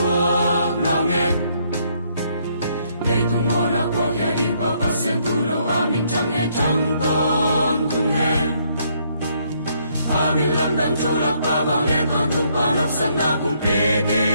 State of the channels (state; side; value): inverted; both; correlation -0.70